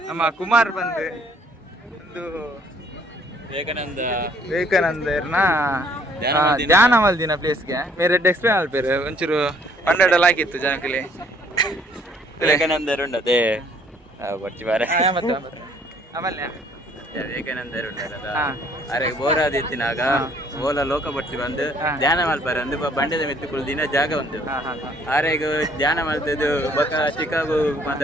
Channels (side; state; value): both; normal; correlation 0.62